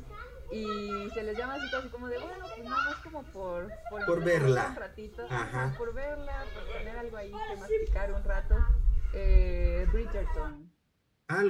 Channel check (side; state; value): both; identical; correlation 1.00